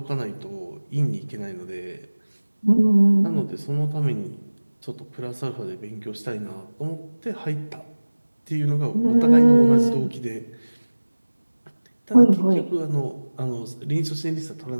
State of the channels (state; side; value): inverted; both; correlation -1.00